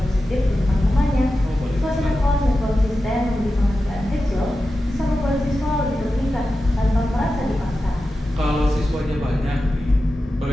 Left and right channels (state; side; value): normal; both; correlation 0.92